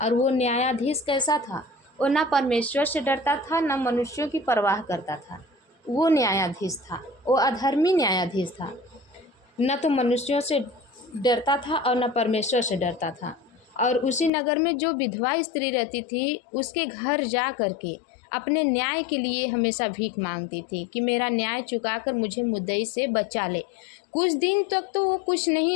और वो न्यायाधीश कैसा था? वो ना परमेश्वर से डरता था, ना मनुष्यों की परवाह करता था। वो न्यायाधीश था, वो अधर्मी न्यायाधीश था, न तो मनुष्यों से डरता था और न परमेश्वर से डरता था। और उसी नगर में जो विधवा स्त्री रहती थी, उसके घर जा कर के अपने न्याय के लिए हमेशा भीख मांगती थी कि मेरा न्याय चुकाकर मुझे मुद्दई से बचा ले। कुछ दिन तक तो वो कुछ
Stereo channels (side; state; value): right; drops out; at 14.3 s